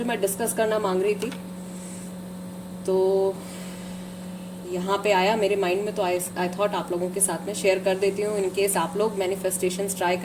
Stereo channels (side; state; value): both; identical; correlation 1.00